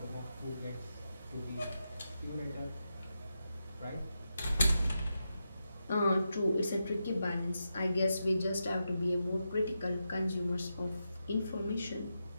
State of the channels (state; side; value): inverted; both; correlation -0.87